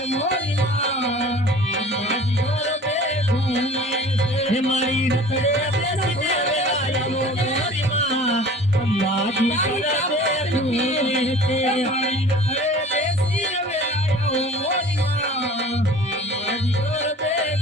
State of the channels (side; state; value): both; normal; correlation 0.44